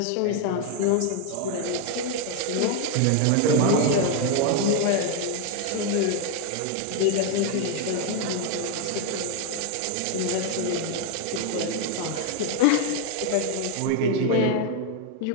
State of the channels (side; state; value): both; different; correlation 0.01